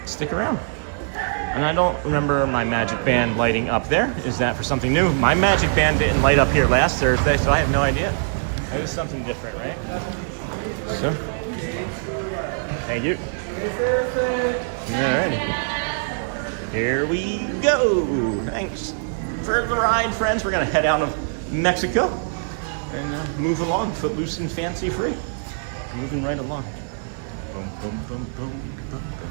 stick around. And I don't remember my magic band lighting up there. Is that for something new? My magic band didn't light up here last Thursday, so I have no idea. That is something different, right? So, thank you. Alright. Here we go. Thanks for the ride, friends. We're going to head out of Mexico and move along, footloose and fancy free. Moving right along. Boom, boom, boom, boom, boom,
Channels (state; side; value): silent; left; digital silence